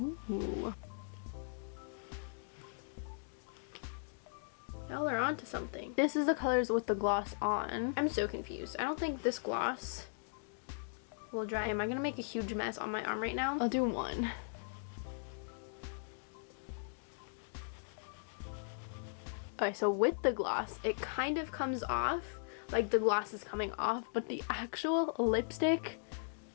Y'all are onto something. This is the colors with the gloss on. I'm so confused. I don't think this gloss will dry. Am I gonna make a huge mess on my arm right now? I'll do one. Okay, so with the gloss, it kind of comes off, like the gloss is coming off, but the actual lipstick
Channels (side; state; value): right; silent; digital silence